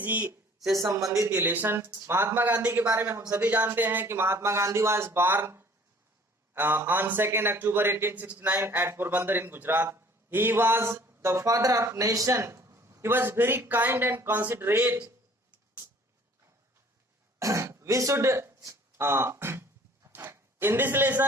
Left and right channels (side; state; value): both; normal; correlation 0.53